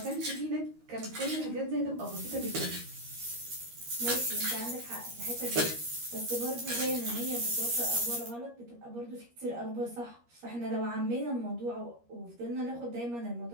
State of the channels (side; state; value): left; late; 13 ms